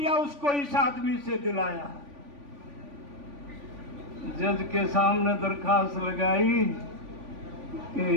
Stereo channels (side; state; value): left; late; 3.5 ms